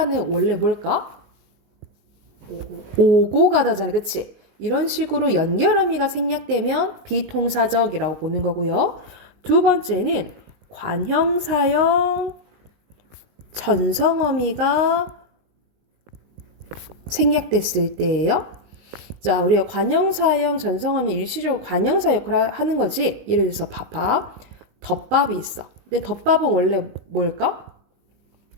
원래 뭘까? 오고 가다잖아. 그치? 이런 식으로 연결어미가 생략되면 비통사적이라고 보는 거고요. 두 번째는 관형사형 전성어미가 생략됐을 때예요. 자, 우리가 관형사형 전성어미 일시적으로 관형사 역할을 하는 거지. 예를 들어서 밥, 덮밥이 있어. 근데 덮밥은 원래 뭘까?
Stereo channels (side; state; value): left; late; 19 ms